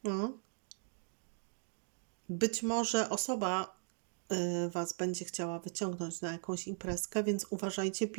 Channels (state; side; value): silent; left; 52 dB below the other